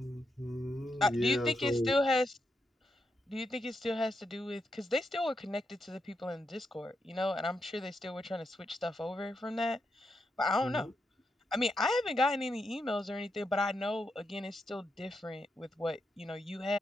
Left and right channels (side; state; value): both; normal; correlation 0.84